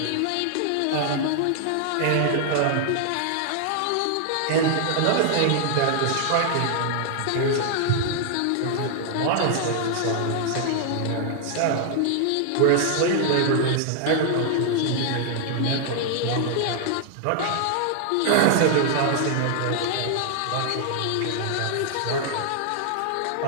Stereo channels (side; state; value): both; different; correlation 0.00